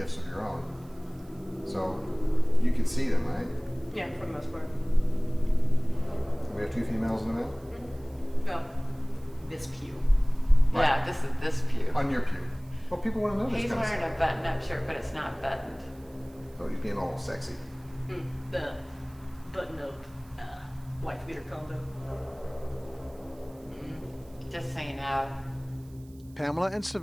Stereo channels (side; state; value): right; noise; hiss, 29 dB below the sound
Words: of your own. So you can see them, right? Yeah, for the most part. We have two females in the male? No. This pew. Right. Yeah, this is this pew. On your pew. Well, people want to know this He's kind of wearing stuff. a button-up shirt, but it's not buttoned. So he's being all sexy. The button-up wife beater combo. Just so you know. Pamela and